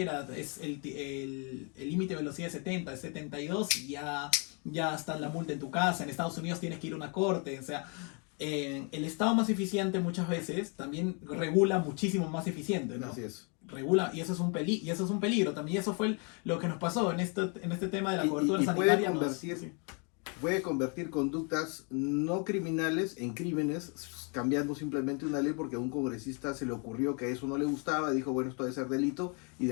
es el límite de velocidad es 70, es 72 y ya está la multa en tu casa. En Estados Unidos tienes que ir a una corte, o sea, el Estado más eficiente muchas veces también regula muchísimo más eficiente, ¿no? Así es. Regula, y eso es un y eso es un peligro también. Y eso fue lo que nos pasó en este tema de la cobertura Y sanitaria. puede convertir conductas no criminales en crímenes, cambiando simplemente una ley porque a un congresista se le ocurrió que eso no le gustaba, dijo, bueno, esto debe ser delito, y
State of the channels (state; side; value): quieter; right; 36.2 dB